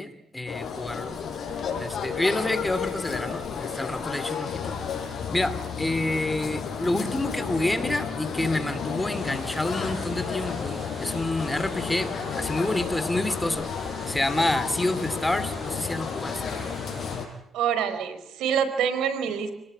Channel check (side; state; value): both; normal; correlation 0.81